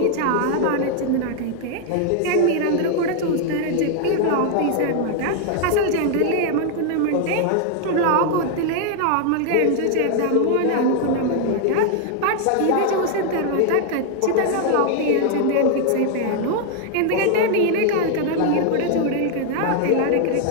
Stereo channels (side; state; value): both; different; correlation 0.00